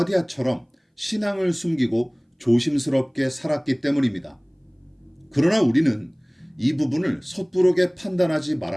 신앙을 숨기고 조심스럽게 살았기 때문입니다. 그러나 우리는 이 부분을 섣부르게 판단하지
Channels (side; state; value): both; identical; correlation 1.00